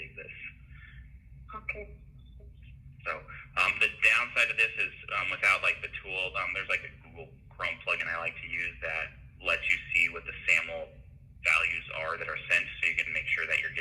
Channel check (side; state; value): both; identical; correlation 1.00